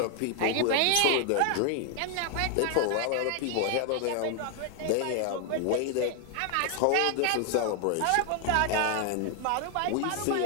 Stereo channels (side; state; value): both; different; correlation 0.00